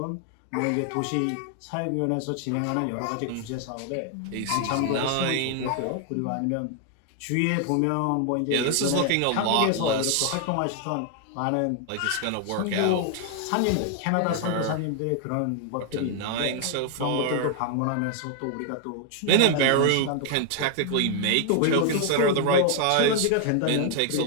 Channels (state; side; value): different; both; correlation 0.00